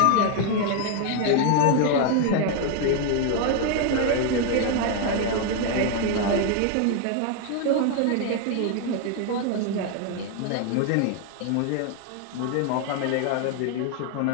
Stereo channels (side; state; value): both; different; correlation 0.01